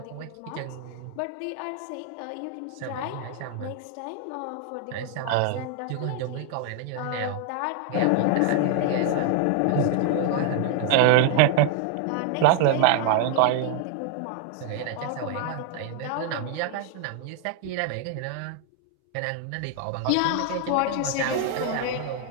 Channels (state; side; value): different; both; correlation 0.00